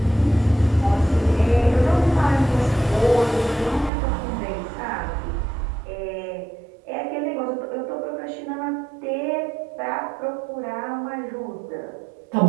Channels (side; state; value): left; drops out; at 3.9 s